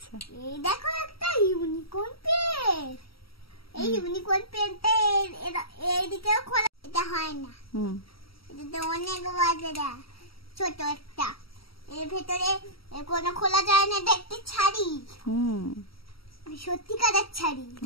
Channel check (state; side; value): late; right; 0.75 ms